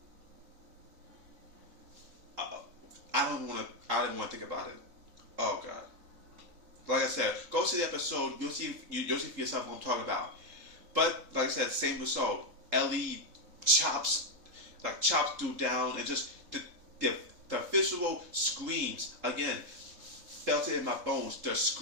I didn't want to think about it. Oh God. Like I said, go see the episode. You'll see for yourself what I'm talking about. But like I said, same result. Ellie chops dude down, and just the visual screams again. Felt it in my bones. The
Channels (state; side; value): late; left; 3.7 ms